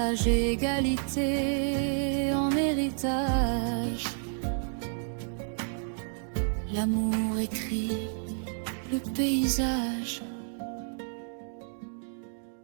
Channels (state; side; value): silent; left; digital silence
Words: égalité en héritage. L'amour écrit le paysage.